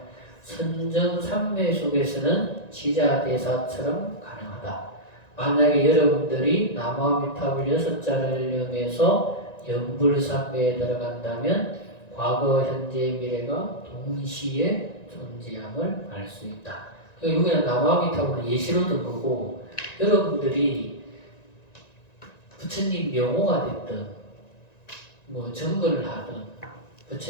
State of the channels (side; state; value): right; late; 1.9 ms